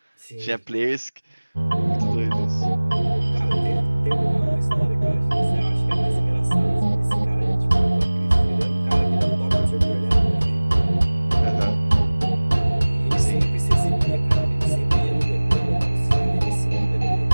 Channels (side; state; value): both; inverted; correlation -1.00